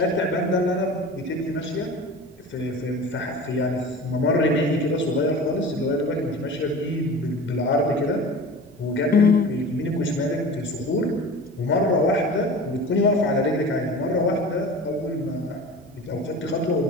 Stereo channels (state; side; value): normal; both; correlation 0.36